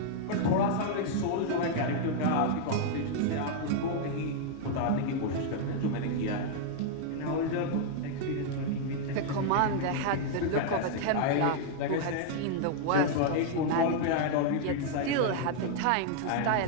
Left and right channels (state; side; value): different; both; correlation 0.00